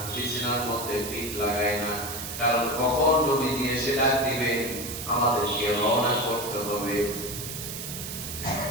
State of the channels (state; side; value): noise; right; hiss, 7 dB below the sound